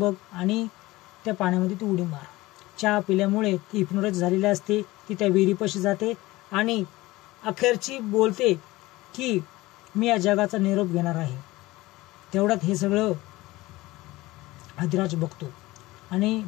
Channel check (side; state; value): right; quieter; 19.4 dB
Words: आणि त्या पाण्यामध्ये तू उडी मार. चहा पिल्यामुळे ती हिप्नोटाइज झालेली असते. ती त्या विहिरीपाशी जाते आणि अखेरची बोलते की मी या जगाचा निरोप घेणार आहे. तेवढ्यात हे सगळं अधिराज बघतो आणि